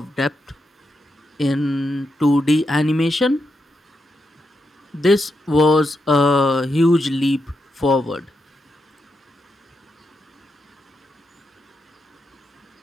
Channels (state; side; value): normal; both; correlation 0.84